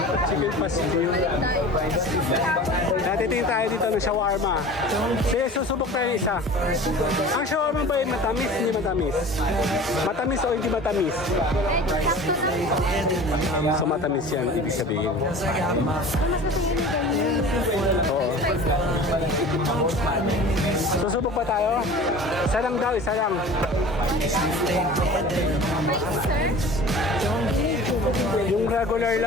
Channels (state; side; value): normal; both; correlation 0.40